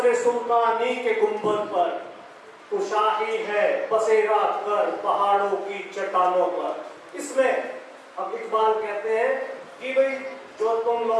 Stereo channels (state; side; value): identical; both; correlation 1.00